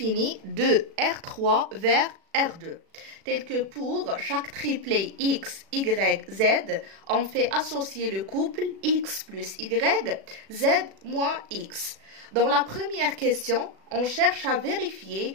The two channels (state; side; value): late; left; 36 ms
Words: de R3 vers R2, tel que pour chaque triplet X, Y, Z, on fait associer le couple X plus Y, Z moins X. Dans la première question, on cherche à vérifier